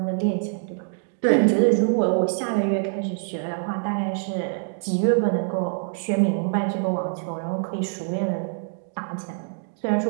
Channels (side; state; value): left; silent; digital silence